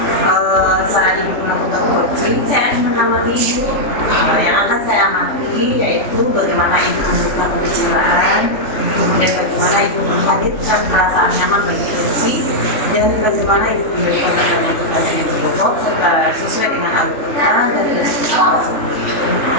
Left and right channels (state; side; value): late; right; 3.5 ms